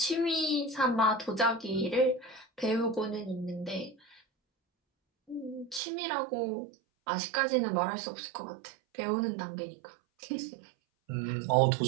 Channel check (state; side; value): drops out; left; at 5.8 s